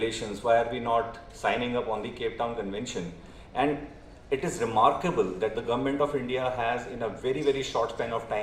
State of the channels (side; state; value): both; identical; correlation 1.00